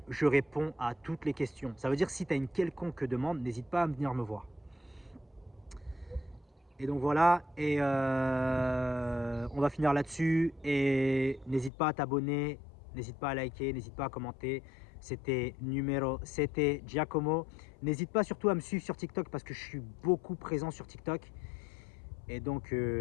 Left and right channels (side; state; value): right; drops out; at 11.7 s